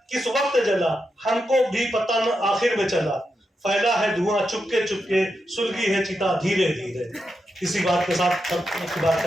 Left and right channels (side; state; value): both; normal; correlation 0.86